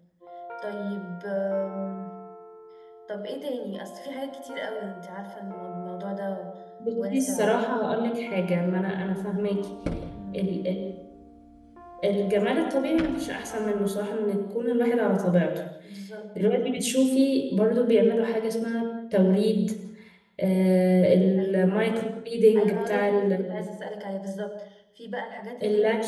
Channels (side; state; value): both; identical; correlation 1.00